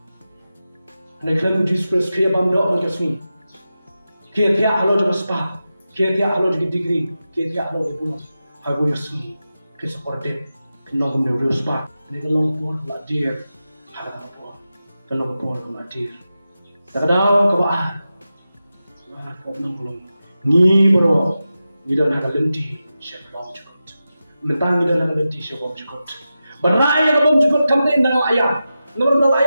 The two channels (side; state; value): both; inverted; correlation -0.92